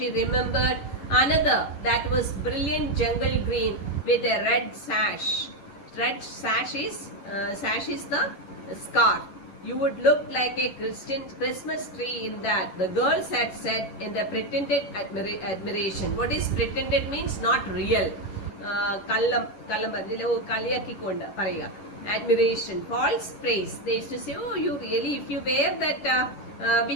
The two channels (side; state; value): right; late; 11 ms